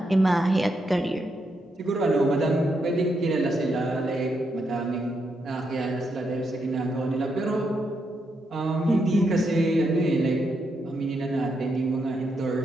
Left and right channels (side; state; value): both; normal; correlation 0.81